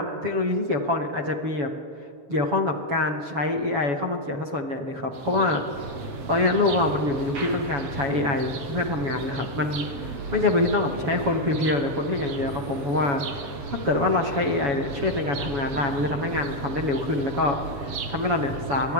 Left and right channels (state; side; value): late; left; 7.1 ms